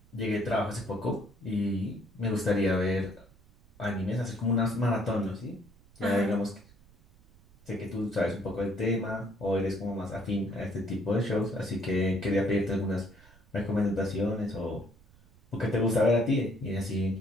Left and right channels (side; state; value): right; noise; rumble, 27 dB below the sound